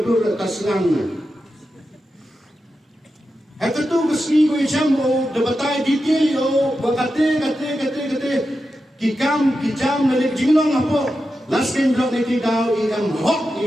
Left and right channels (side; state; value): both; normal; correlation 0.90